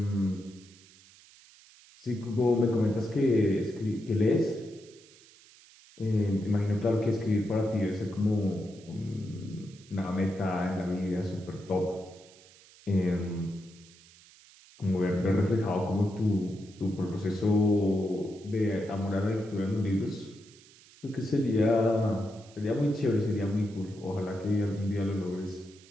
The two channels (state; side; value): noise; right; hiss, 24 dB below the sound